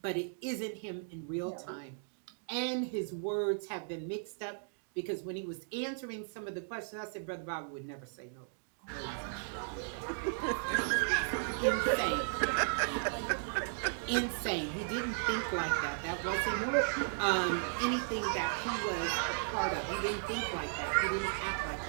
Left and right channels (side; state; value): left; silent; digital silence